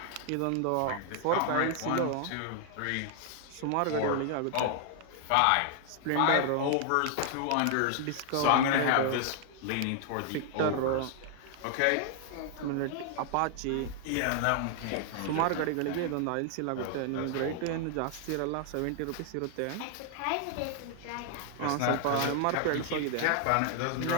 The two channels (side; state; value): both; different; correlation 0.00